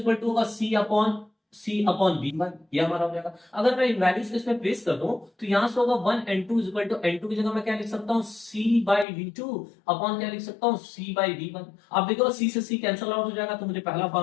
टू होगा c अपॉन v1, ये हमारा हो जाएगा। अगर मैं इन वैल्यूज को इसमें प्लेस कर दूं, तो यहां से होगा 1 n2 is equal to n2 की जगह मैं क्या लिख सकता हूं, c बाय v2 अपॉन क्या लिख सकता हूं, c बाय v1। अब देखो c से c कैंसिल आउट हो जाएगा, तो मुझे पहला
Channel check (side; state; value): right; drops out; at 9.1 s